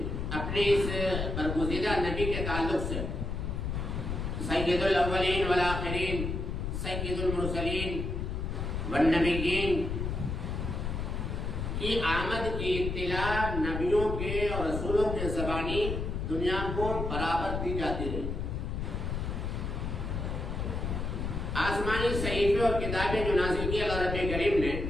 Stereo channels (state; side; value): noise; left; rumble, 3 dB below the sound